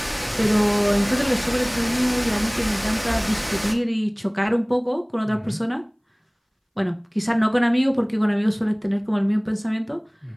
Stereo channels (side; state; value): both; identical; correlation 1.00